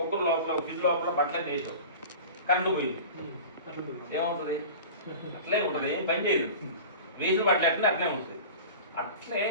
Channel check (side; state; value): both; inverted; correlation -0.36